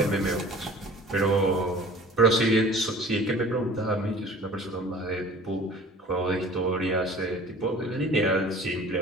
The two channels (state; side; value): normal; both; correlation 0.46